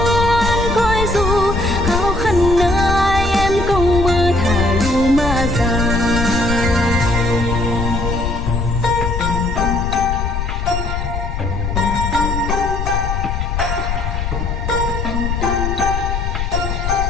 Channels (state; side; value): noise; left; rumble, 2 dB below the sound